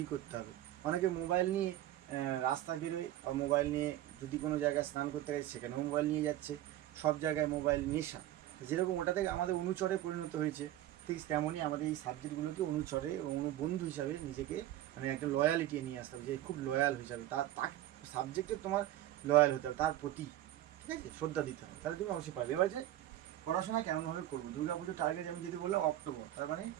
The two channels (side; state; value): left; quieter; 13.7 dB